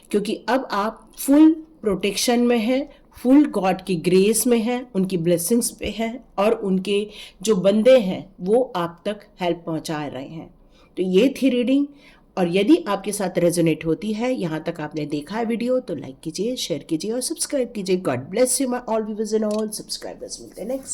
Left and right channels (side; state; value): both; identical; correlation 1.00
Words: क्योंकि अब आप फुल प्रोटेक्शन में हैं, फुल गॉड की ग्रेस में हैं, उनकी ब्लेसिंग्स पे हैं और उनके जो बंदे हैं वो आप तक हेल्प पहुंचा रहे हैं। तो ये थी रीडिंग, और यदि आपके साथ रेजोनेट होती है, यहाँ तक आपने देखा है वीडियो, तो लाइक कीजिए, शेयर कीजिए और सब्सक्राइब कीजिए। God bless you my all viewers and all subscribers. मिलते हैं